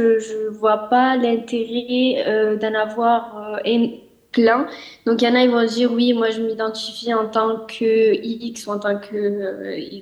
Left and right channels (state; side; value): identical; both; correlation 1.00